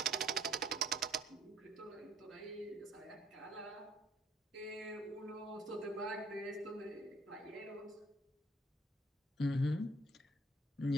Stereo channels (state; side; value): normal; both; correlation 0.62